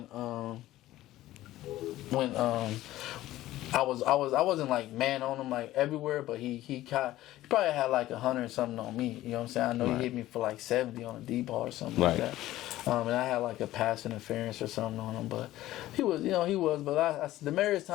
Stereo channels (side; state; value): right; quieter; 15.3 dB